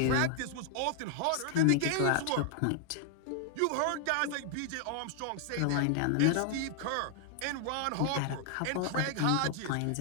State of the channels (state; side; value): different; both; correlation 0.00